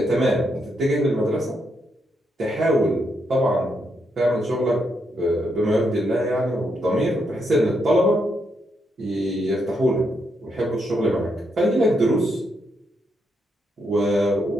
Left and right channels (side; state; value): both; normal; correlation 0.79